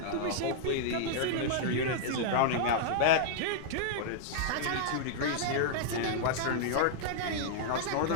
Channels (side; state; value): both; different; correlation -0.01